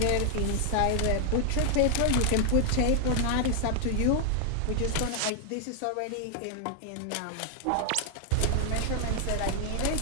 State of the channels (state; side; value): different; both; correlation 0.00